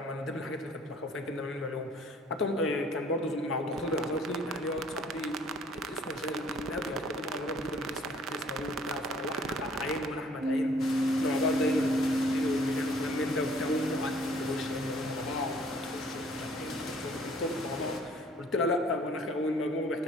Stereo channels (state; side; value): normal; both; correlation 0.57